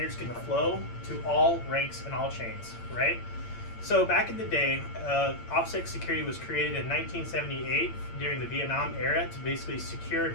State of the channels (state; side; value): late; right; 8.8 ms